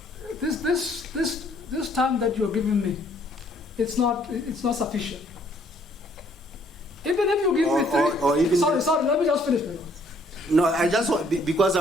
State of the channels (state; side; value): normal; both; correlation 0.64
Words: this time that you're giving me, it's not sufficient. Even if you give me three. Sorry. Let me just finish. No, I just want, because